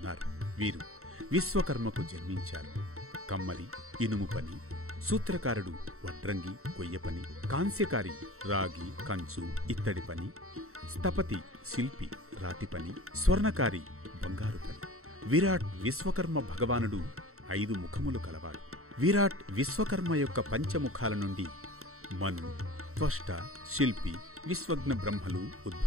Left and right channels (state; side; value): late; left; 0.63 ms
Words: వీరు విశ్వకర్మకు జన్మించారు. కమ్మరి, ఇనుము పని, సూత్రకారుడు వడ్రంగి, కొయ్య పని, కాంస్యకారి రాగి, కంచు, ఇత్తడి పని, స్థపతి శిల్పి, రాతి పని, స్వర్ణకారి బంగారు పని. విరాట్ విశ్వకర్మ భగవానుడు 5 ముఖములు కలవాడు. విరాట్ విశ్వకర్మ యొక్క పంచముఖాల నుండి మను, త్వష్ట, శిల్పి, విశ్వజ్ఞ బ్రహ్మలు